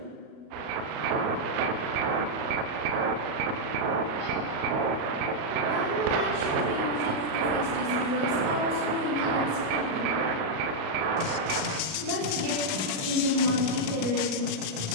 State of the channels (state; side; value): late; left; 36 ms